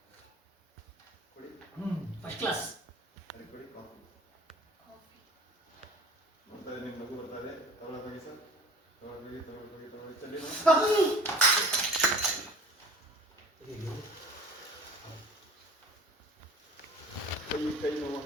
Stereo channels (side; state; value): both; normal; correlation 0.44